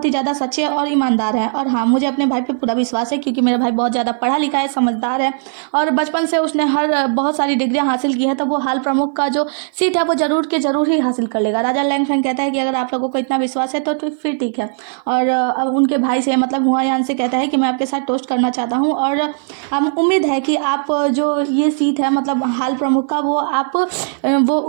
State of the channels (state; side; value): silent; left; 57 dB below the other